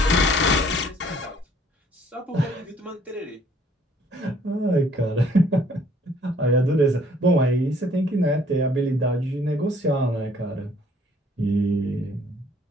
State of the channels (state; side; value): normal; both; correlation 0.60